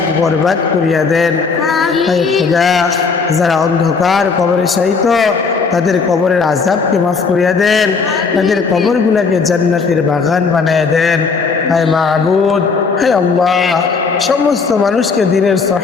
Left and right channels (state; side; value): quieter; right; 4.9 dB